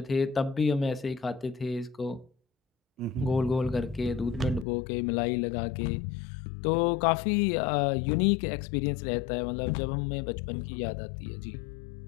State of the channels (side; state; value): right; drops out; at 4.7 s